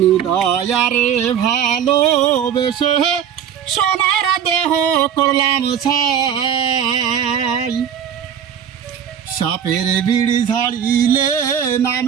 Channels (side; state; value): left; quieter; 8.7 dB